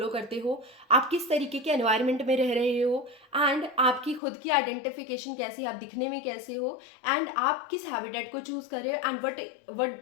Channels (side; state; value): right; drops out; at 4.2 s